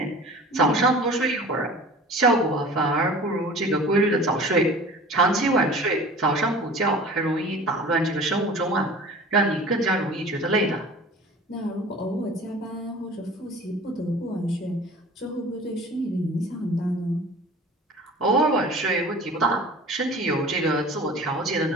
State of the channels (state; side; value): normal; both; correlation 0.41